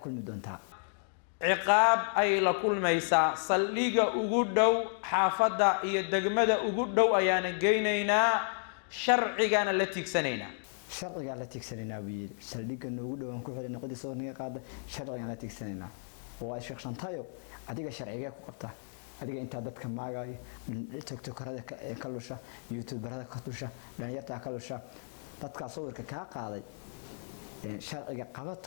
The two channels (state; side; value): silent; right; digital silence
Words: kulmi doontaa ciqaab ay la kulmaysaa saldhiga ugu dhow xaafada iyo degmada ugu dhow ayaana geynaynaa sharcigaana la tiigsanayna sharciga la tiigsanayna wiil saldhiga ugu dhow aan ku xirina qodi soo naga qaada sharciga la tiigsanayna oo Sheekh Shantay adiga sharciga ku qabta adiga inta dadka maagay TikTokerada ka lusha YouTuberada ka lusha dhalinyarta ka lusha dadka sawirka ka qaaday sharciga